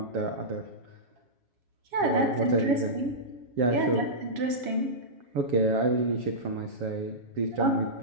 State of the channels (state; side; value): late; left; 7.3 ms